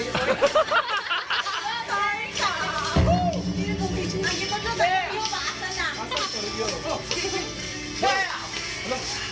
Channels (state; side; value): identical; both; correlation 1.00